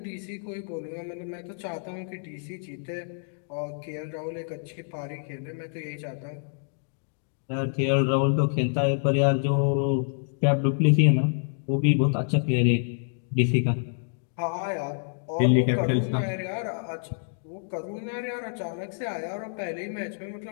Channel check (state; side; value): silent; right; digital silence